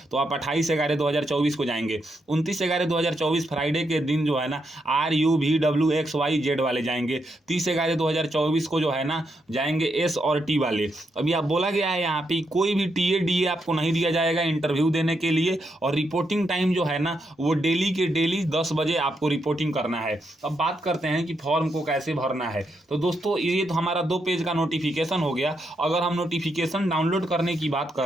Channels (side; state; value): both; normal; correlation 0.81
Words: तो आप 28/11/2024 को जाएंगे। 29/11/2024 फ्राइडे के दिन जो है ना RUVWXYZ वाले जाएंगे। 30/11/2024 को जो है ना जाएंगे S और T वाले। अभी आप बोला गया है यहाँ पे कोई भी TA DA आपको नहीं दिया जाएगा इंटरव्यू देने के लिए, और रिपोर्टिंग टाइम जो है ना वो डेली के डेली 10 बजे आपको रिपोर्टिंग करना है। अब बात करते हैं कि फॉर्म को कैसे भरना है। तो दोस्तों ये तो हमारा 2 पेज का नोटिफिकेशन हो गया। अगर हम नोटिफिकेशन डाउनलोड करने की बात